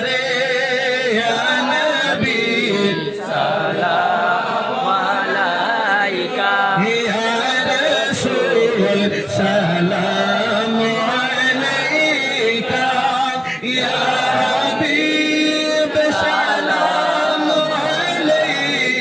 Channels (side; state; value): both; identical; correlation 1.00